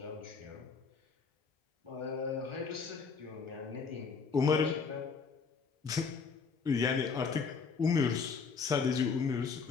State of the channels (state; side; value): quieter; right; 5.2 dB